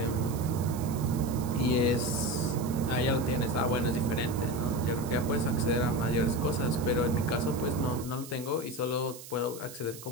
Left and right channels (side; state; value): right; noise; hiss, 15 dB below the sound